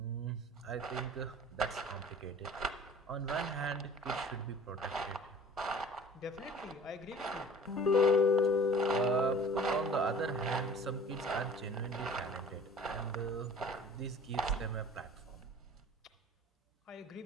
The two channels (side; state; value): both; normal; correlation 0.46